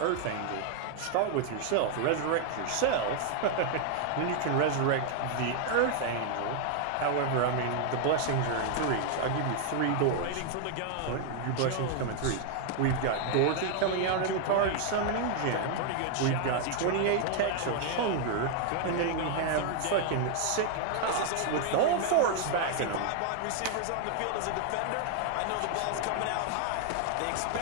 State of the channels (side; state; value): both; different; correlation 0.00